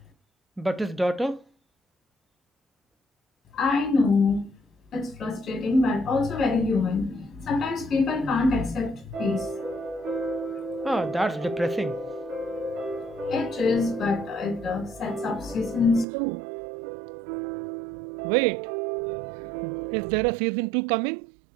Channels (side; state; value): left; drops out; at 16.1 s